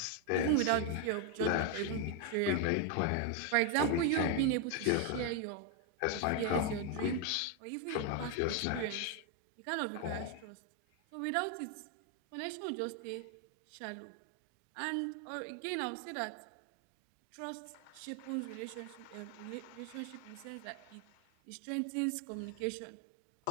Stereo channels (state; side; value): different; both; correlation 0.01